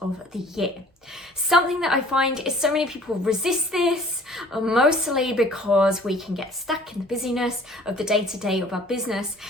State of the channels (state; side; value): normal; both; correlation 0.52